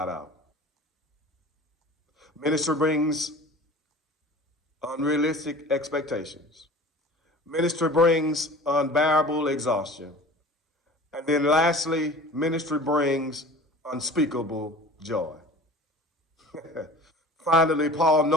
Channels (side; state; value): both; normal; correlation 0.41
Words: out. Ministry brings unrealistic expectations. Ministry brings unbearable exhaustion. And then lastly, ministry brings unspeakable joy. Finally, Paul,